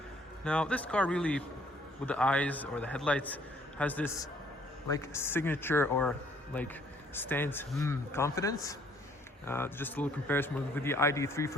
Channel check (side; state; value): both; normal; correlation 0.63